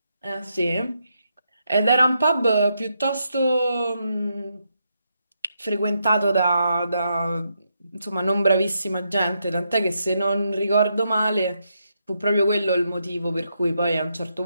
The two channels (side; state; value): both; inverted; correlation -0.81